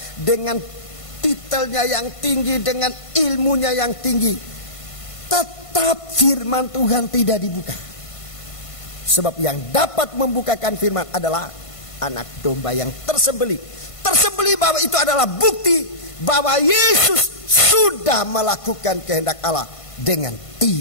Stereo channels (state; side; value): late; right; 1.5 ms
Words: dengan titelnya yang tinggi, dengan ilmunya yang tinggi, tetap firman Tuhan tidak dibuka. Sebab yang dapat membukakan firman adalah anak domba yang tersembelih. Tersembelih bahwa itu adalah bukti bahwa Yesus sudah melakukan kehendak Allah dengan